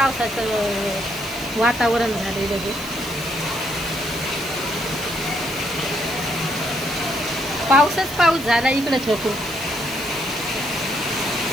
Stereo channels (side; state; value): right; noise; hiss, 17 dB below the sound